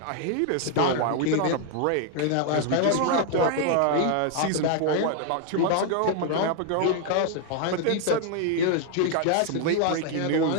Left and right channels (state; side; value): different; both; correlation 0.00